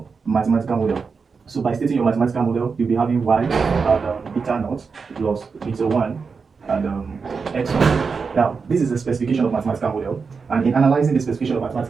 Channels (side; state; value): left; quieter; 5.1 dB